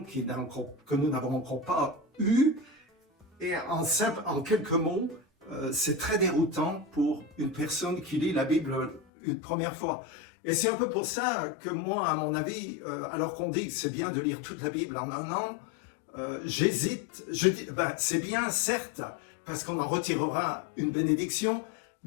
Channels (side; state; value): right; drops out; at 9.0 s